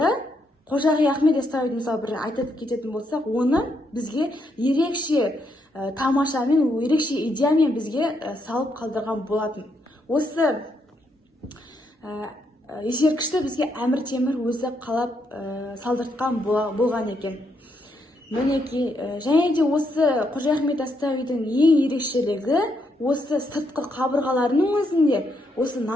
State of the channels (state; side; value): normal; both; correlation 0.77